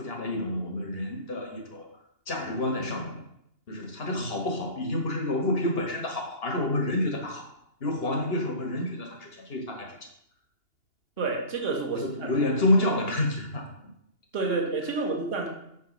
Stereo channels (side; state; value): right; late; 2.8 ms